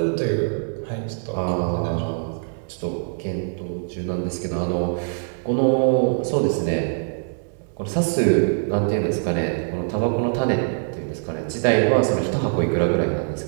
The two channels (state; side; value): silent; left; digital silence